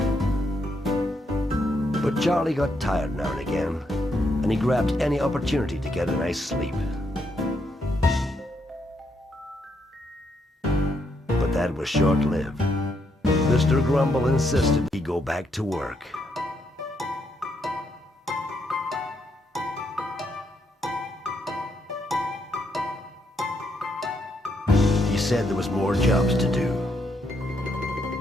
But Charlie got tired now and again, and he grabbed any opportunity to get a nice sleep. But that was short-lived. Mr. Grumble insisted he go back to work. He said there was more jobs to do.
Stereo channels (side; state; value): both; normal; correlation 0.77